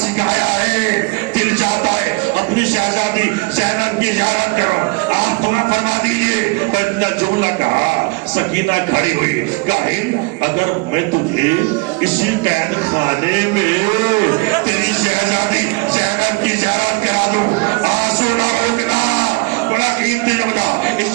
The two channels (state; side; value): quieter; left; 27.3 dB